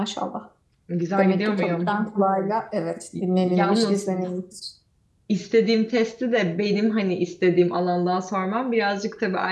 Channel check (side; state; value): both; identical; correlation 1.00